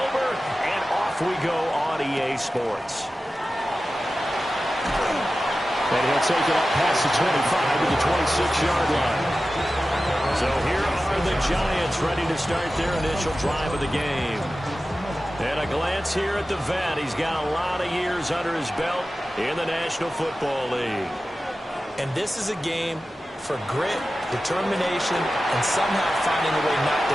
and off we go on EA Sports. And he'll take it up past the 25 to the 26-yard line. So here are the Giants ready to start their initial drive of the game. And a glance here at the vet. He's got a lot of years under his belt in the National Football League. And this is a game for grit, determination, and somehow finding a way not to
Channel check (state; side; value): normal; both; correlation 0.94